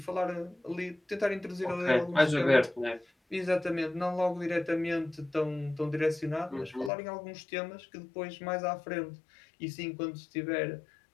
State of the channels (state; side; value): drops out; right; at 6.9 s